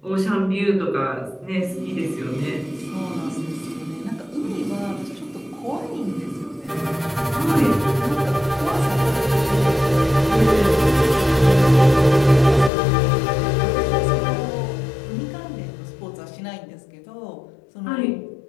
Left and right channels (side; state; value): right; drops out; at 12.7 s